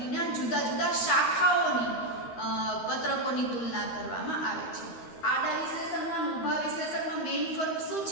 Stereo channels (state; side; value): late; right; 13 ms